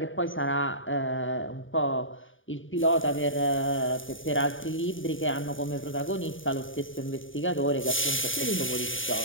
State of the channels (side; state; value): right; late; 0.57 ms